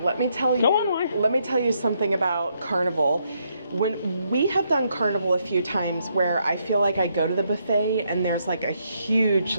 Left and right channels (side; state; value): both; inverted; correlation -0.76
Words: me tell you. Go on, why? Let me tell you something about Carnival. When we have done Carnival a few times, where I feel like I go to the buffet and there's like a huge